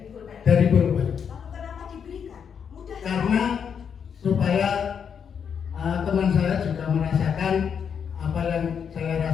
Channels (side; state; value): right; quieter; 7.3 dB